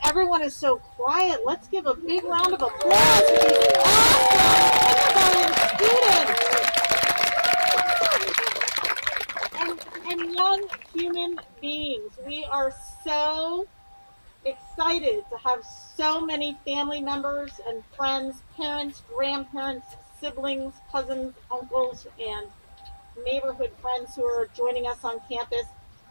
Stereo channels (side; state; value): both; inverted; correlation -1.00